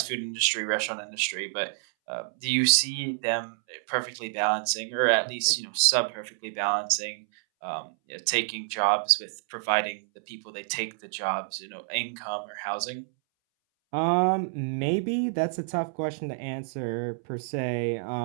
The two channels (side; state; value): left; silent; 59 dB below the other